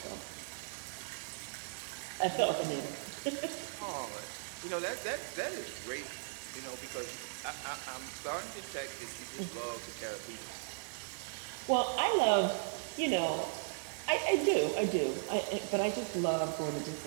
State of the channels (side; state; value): left; silent; 53 dB below the other